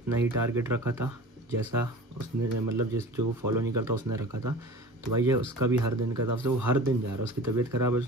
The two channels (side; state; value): both; normal; correlation 0.39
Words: ही टारगेट रखा था जैसा उसने, मतलब जिस जो फॉलो नहीं करता उसने रखा था, तो भाई ये उसका भी हर दिन का हिसाब से, वो हर दिन जा रहा है, उसकी तबीयत ख़राब है,